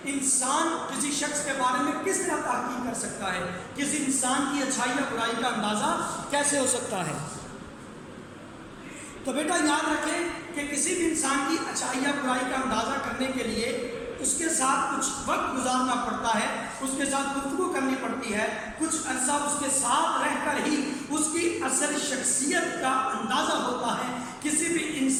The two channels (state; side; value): identical; both; correlation 1.00